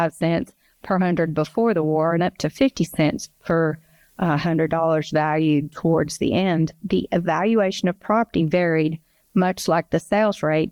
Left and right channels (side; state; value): both; identical; correlation 1.00